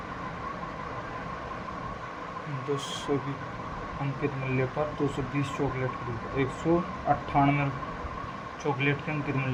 200 की अंकित मूल्य पर 220 चॉकलेट खरीदता, 198 चॉकलेट के अंकित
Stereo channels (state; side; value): identical; both; correlation 1.00